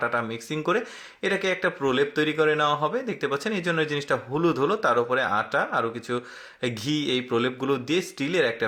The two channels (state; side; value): identical; both; correlation 1.00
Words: মিক্সিং করে এটাকে একটা প্রলেপ তৈরি করে নেওয়া হবে, দেখতে পাচ্ছেন। এই জন্য জিনিসটা হলুদ হলো, তার উপরে আটা আরও কিছু ঘি এই প্রলেপগুলো দিয়ে স্টিলের একটা